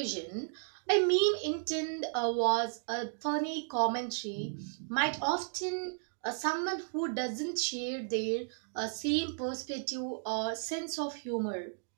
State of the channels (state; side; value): silent; left; digital silence